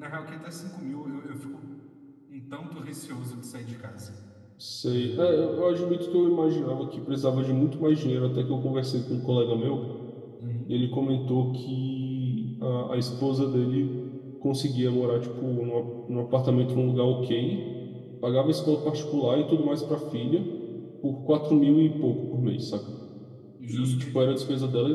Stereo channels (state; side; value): identical; both; correlation 1.00